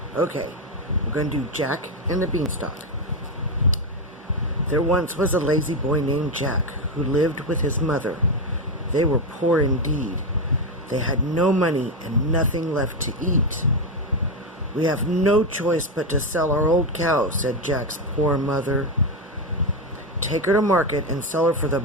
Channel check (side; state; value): both; normal; correlation 0.09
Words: Okay, we're going to do Jack and the Beanstalk. There once was a lazy boy named Jack who lived with his mother. They were poor indeed. They had no money and nothing left to eat. "We have no choice but to sell our old cow," said Jack's poor mother. "Take her to market and sell her for the